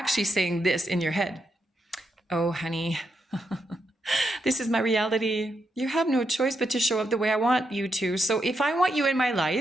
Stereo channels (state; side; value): normal; both; correlation 0.82